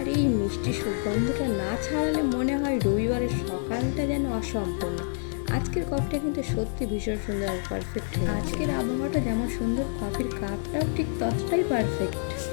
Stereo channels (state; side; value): silent; right; digital silence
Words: এই মিষ্টি সুগন্ধটা না ছাড়ালে মনে হয় রবিবারের সকালটা যেন অসম্পূর্ণ। আজকের কফিটা কিন্তু সত্যি ভীষণ সুন্দর আর পারফেক্ট। আজকের আবহাওয়াটা যেমন সুন্দর, কফির কাপটাও ঠিক ততটাই পারফেক্ট।